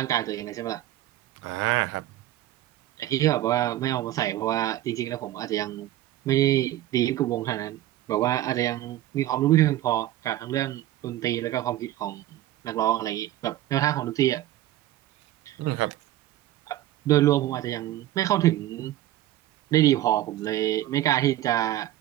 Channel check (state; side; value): quieter; left; 14.2 dB